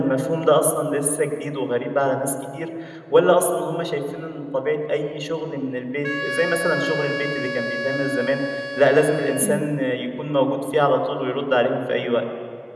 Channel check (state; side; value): identical; both; correlation 1.00